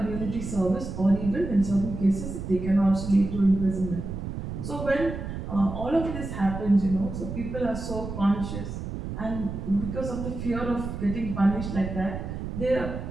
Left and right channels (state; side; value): noise; right; rumble, 7 dB below the sound